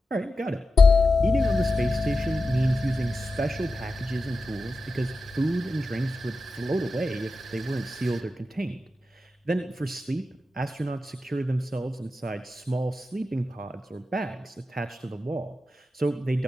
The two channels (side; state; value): both; normal; correlation 0.91